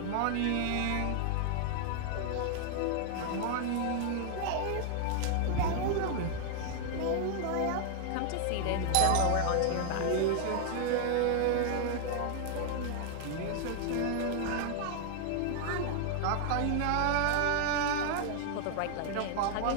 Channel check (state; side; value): different; both; correlation 0.00